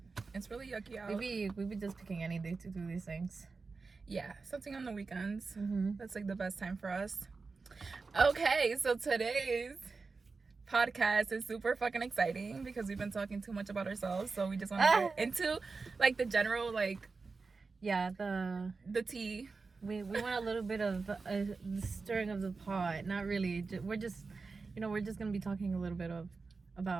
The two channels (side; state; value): left; quieter; 4.3 dB